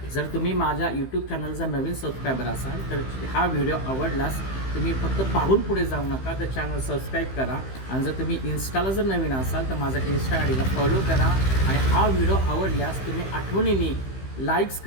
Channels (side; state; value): right; late; 15 ms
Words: जर तुम्ही माझ्या यूट्यूब चॅनलचा नवीन सबस्क्रायबर असाल तर हा व्हिडिओ आवडलास तुम्ही फक्त पाहून पुढे जाऊ नका, तर चॅनल सबस्क्राईब करा. आणि जर तुम्ही इन्स्टाला जर नवीन असाल तर माझा इन्स्टा आय डीला फॉलो करा. आणि हा व्हिडिओ आवडल्यास तुम्ही आठवणीने लाईक्स